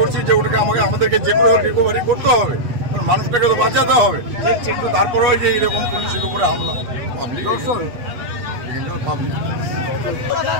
যে ওটাকে আমাদেরকে যে করে রিকভারি করতে হবে, মানুষটাকে তো বাঁচাতে হবে। কিন্তু তারপরেও যে এরকম পুলিশের উপরে হামলা, পাবলিক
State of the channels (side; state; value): left; late; 8.1 ms